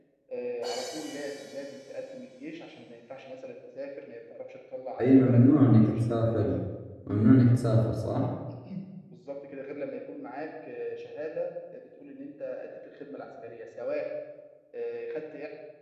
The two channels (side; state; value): both; identical; correlation 1.00